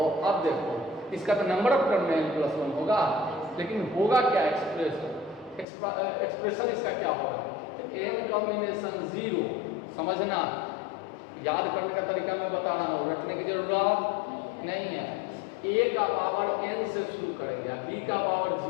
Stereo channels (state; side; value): drops out; right; at 5.7 s